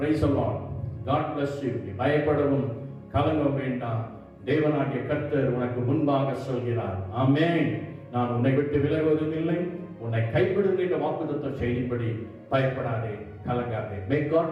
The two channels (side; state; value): both; identical; correlation 1.00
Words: the Lord. God bless you. பயப்படவும் கலங்க வேண்டாம். தேவனாகிய கர்த்தர் உனக்கு முன்பாக சொல்கிறார். ஆமென். நான் உன்னை விட்டு விலகுவதும் இல்லை, உன்னை கைவிடுகின்ற வாக்குத்தத்த செய்தின்படி பயப்படாதே, கலங்காதே. May God